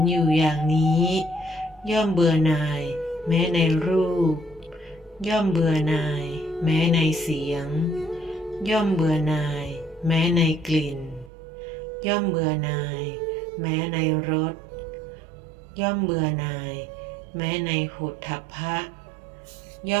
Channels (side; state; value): left; drops out; at 11.3 s